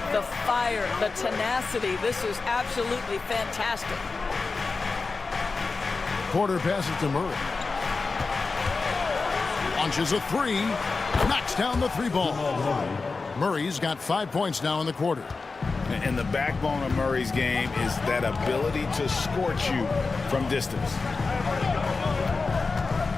the fire, the tenacity. This is absolutely fantastic. Porter passes to Murray. Launches a 3. Knocks down the 3 ball. Murray's got 5 points now in the quarter. And the backbone of Murray's game is that ability to scorch you from distance.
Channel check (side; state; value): right; quieter; 4.1 dB